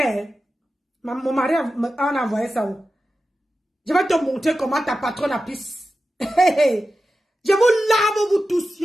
Mon mari a envoyé ça où? Je vais te montrer comment ta patronne a pisse. Je vous lave vous tous.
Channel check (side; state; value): both; normal; correlation 0.93